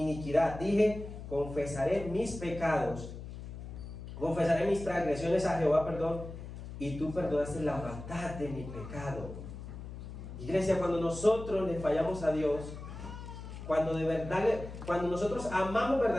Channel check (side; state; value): left; noise; hum, 11 dB below the sound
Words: Dije: confesaré mis pecados, confesaré mis transgresiones a Jehová, y tú perdonaste la maldad de mi pecado. Iglesia, cuando nosotros le fallamos a Dios, cuando nosotros amamos